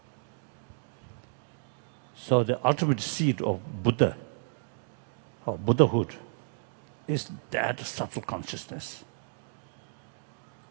So the ultimate seed of Buddha, or Buddhahood, is that subtle consciousness.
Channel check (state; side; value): silent; left; digital silence